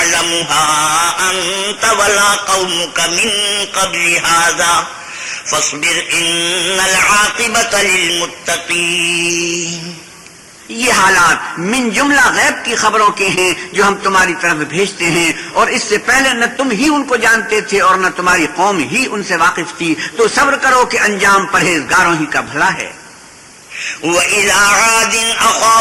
أَنْتَ وَلَا قَوْمُكَ مِنْ قَبْلِ هَذَا فَاصْبِرْ إِنَّ الْعَاقِبَةَ لِلْمُتَّقِينَ۔ یہ حالات من جملہ غیب کی خبروں کے ہیں جو ہم تمہاری طرف بھیجتے ہیں، اور اس سے پہلے نہ تم ہی ان کو جانتے تھے اور نہ تمہاری قوم ہی ان سے واقف تھی، تو صبر کرو کہ انجام پرہیزگاروں ہی کا بھلا ہے۔ وَإِلَىٰ عَادٍ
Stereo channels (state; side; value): identical; both; correlation 1.00